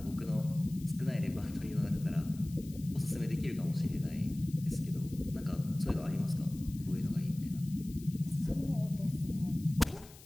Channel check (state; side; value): noise; left; hiss, 20 dB below the sound